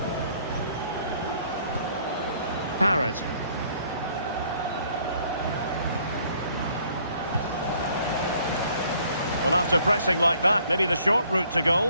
Parrott. Well, after pressing like that, maybe the short route to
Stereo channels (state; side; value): inverted; both; correlation -0.62